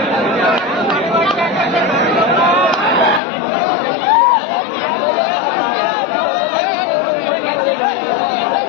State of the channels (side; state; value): right; drops out; at 3.2 s